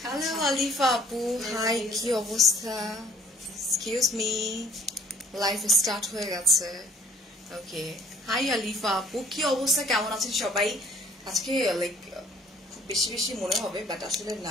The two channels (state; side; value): normal; both; correlation 0.57